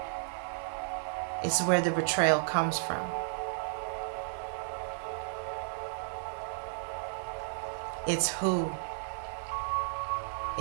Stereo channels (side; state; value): left; silent; digital silence